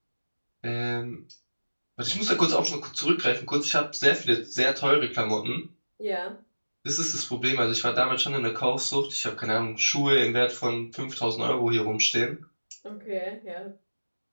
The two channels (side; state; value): both; inverted; correlation -1.00